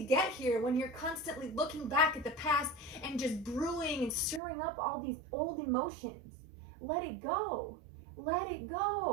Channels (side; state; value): left; drops out; at 4.4 s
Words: get here when you're constantly looking back at the past and just brewing and stirring up all these old emotions? Let it go. Let it